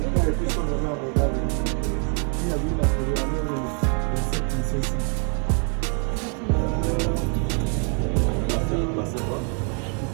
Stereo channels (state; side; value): quieter; left; 38.5 dB